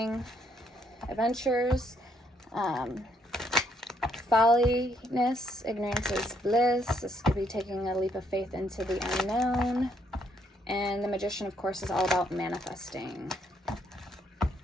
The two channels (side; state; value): both; normal; correlation 0.71